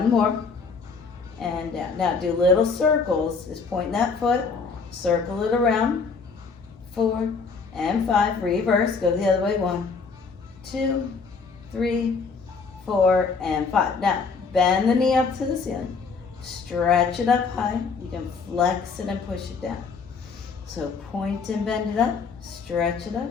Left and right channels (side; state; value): right; quieter; 4.9 dB